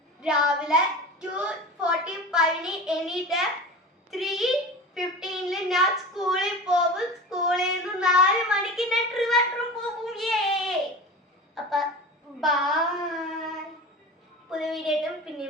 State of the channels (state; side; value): normal; both; correlation 0.32